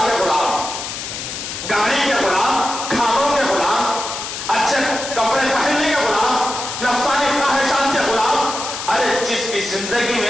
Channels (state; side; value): noise; left; hiss, 7 dB below the sound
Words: کے غلام, گاڑی کے غلام, کھانوں کے غلام, اچھے کپڑے پہننے کے غلام, نفسانی خواہشات کے غلام. ارے جس کی زندگی